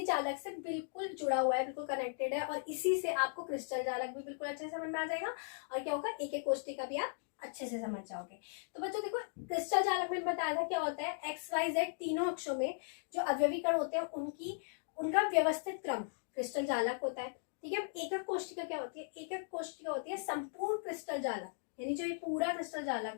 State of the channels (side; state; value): right; silent; digital silence